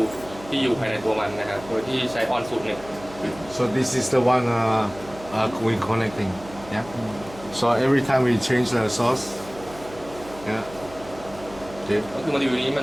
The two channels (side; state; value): right; noise; hum, 18 dB below the sound